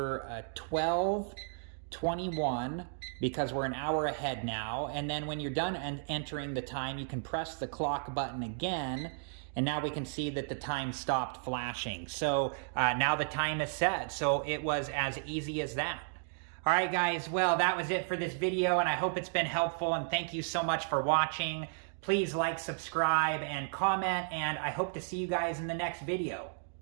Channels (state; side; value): silent; left; digital silence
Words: 12:21 because we're an hour ahead now, and then when you're done entering the time, you can press the clock button again, and now we can see that the time stopped flashing. So now the time is set, so it was as easy as that. All right, guys, well, that was it for this video, and I hope it's been helpful, and thank you so much for watching. Please like, subscribe, and comment, and I hope to see you guys in the next video.